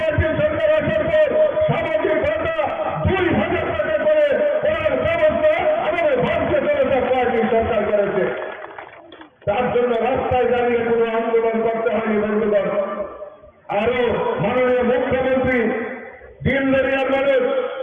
সরকার আসার পর সামাজিক ভাতা 2,000 টাকা করে করার ব্যবস্থা আমাদের ভারতীয় জনতা পার্টির সরকার করেছে। তার জন্য রাস্তায় দাঁড়িয়ে কোনো আন্দোলন করতে হয়নি বন্ধুগণ। আরো মাননীয় মুখ্যমন্ত্রী দিন দরিয়ার মানুষ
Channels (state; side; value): identical; both; correlation 1.00